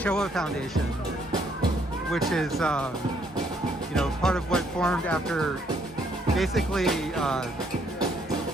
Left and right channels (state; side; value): normal; both; correlation 0.69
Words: Foundation, which is part of what formed after, basically, I'm